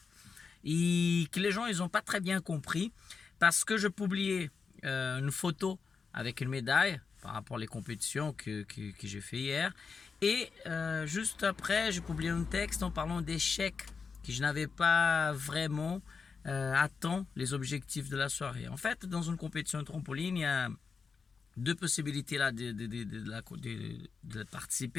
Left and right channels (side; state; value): right; quieter; 5.3 dB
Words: Et que les gens ils ont pas très bien compris parce que je publiais une photo avec une médaille par rapport aux compétitions que j'ai fait hier. Et juste après, j'ai publié un texte en parlant d'échecs que je n'avais pas vraiment atteint les objectifs de la soirée. En fait, dans une compétition de trampoline, il y a deux possibilités là de